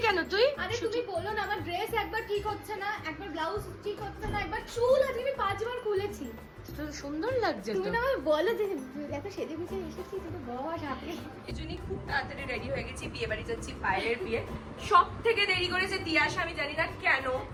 কেন তুই? আরে তুমি বলো না, আমার ড্রেস একবার ঠিক হচ্ছে না, একবার ব্লাউজ ঠিক হচ্ছে না, একবার চুল আজকে আমি 5 বার খুলেছি। তো সুন্দর লাগছে তো। তুমি না আমায় বলো যে এত সেজে গুজে এসেছি, তুমি বস হাতে। এজন্যই খুব তাড়াতাড়ি রেডি হয়ে গেছি, বিয়ে বাড়ি যাচ্ছি, পায়েলের বিয়ে। সব থেকে দেরি করেছে তিয়াশা, আমি জানি না কেন,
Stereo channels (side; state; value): both; identical; correlation 1.00